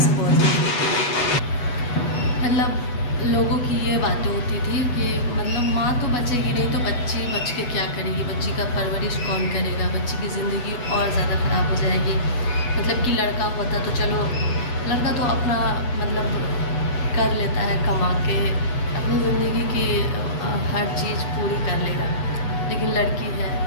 बोलते थे, मतलब लोगों की ये बातें होती थी कि मतलब माँ तो बचेगी नहीं तो बच्ची बच के क्या करेगी, बच्ची का परवरिश कौन करेगा, बच्ची की ज़िंदगी और ज़्यादा ख़राब हो जाएगी। मतलब कि लड़का होता तो चलो, लड़का तो अपना मतलब कर लेता है, कमा के अपनी ज़िंदगी की हर चीज़ पूरी कर लेगा, लेकिन लड़की है,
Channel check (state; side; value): late; right; 8.2 ms